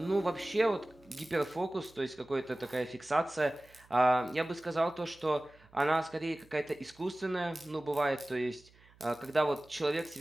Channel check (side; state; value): right; noise; hum, 28 dB below the sound